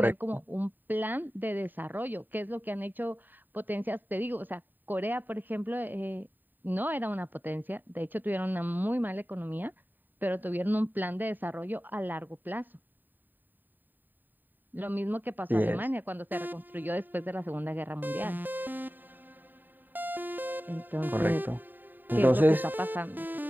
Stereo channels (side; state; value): left; late; 0.090 ms